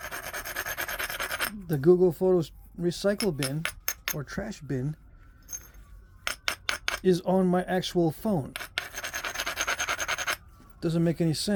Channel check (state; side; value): identical; both; correlation 1.00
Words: The Google Photos recycle bin or trash bin is on my actual phone. Doesn't make any